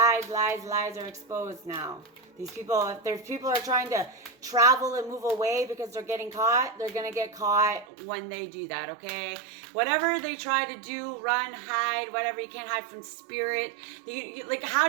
are exposed now. These people, if there's people are trying to travel and move away because they're getting caught, they're going to get caught when they do that, okay? Whatever they try to do, run, hide, whatever, you can't hide from spirit. Like, how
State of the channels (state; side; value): drops out; left; at 7.9 s